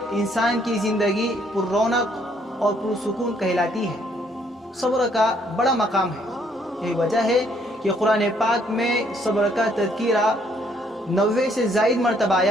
इंसान की ज़िंदगी पुररौनक और पुरसुकून कहलाती है। सब्र का बड़ा मकाम है। यही वजह है कि कुरान पाक में सब्र का तज़किरा 90 से ज़ायद मरतबा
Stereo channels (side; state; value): both; normal; correlation 0.67